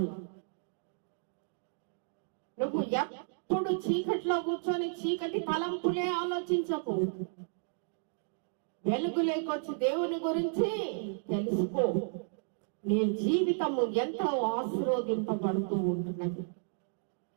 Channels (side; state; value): left; silent; digital silence